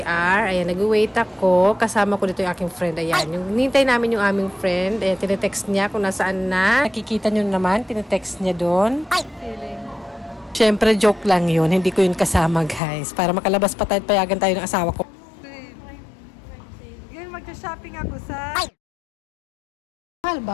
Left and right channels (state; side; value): drops out; right; at 12.8 s